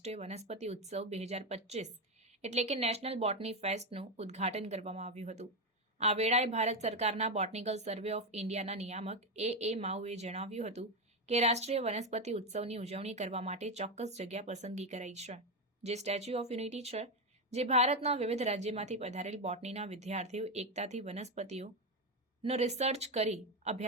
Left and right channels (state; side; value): normal; both; correlation 0.10